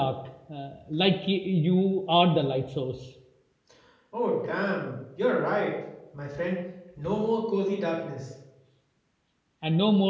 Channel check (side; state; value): both; identical; correlation 1.00